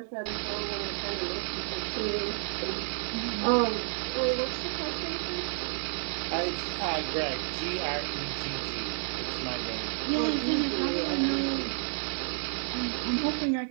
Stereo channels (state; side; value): silent; left; 57 dB below the other